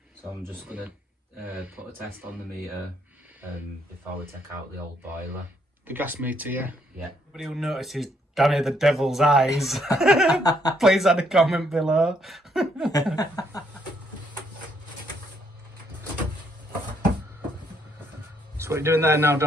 So I'm just going to put a test on the meter before we take out the old boiler. The gas meter, yeah? Yeah. Anybody who notices Danny the Devil's eyes, please add a comment below. So what are you doing there now,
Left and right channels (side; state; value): both; normal; correlation 0.71